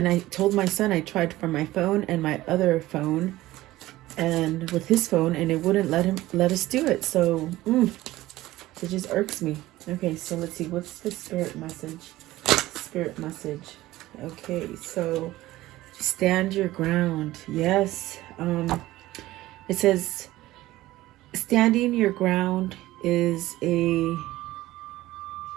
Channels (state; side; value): quieter; left; 16.7 dB